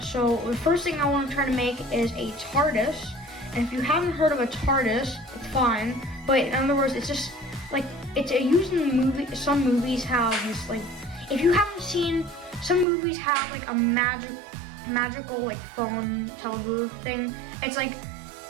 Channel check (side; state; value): left; drops out; at 12.9 s